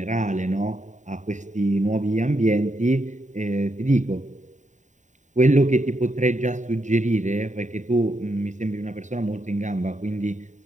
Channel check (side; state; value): left; late; 0.35 ms